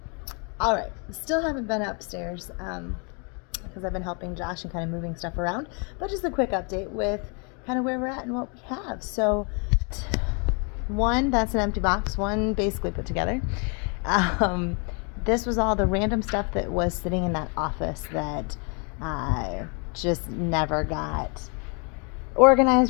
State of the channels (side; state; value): right; quieter; 35.6 dB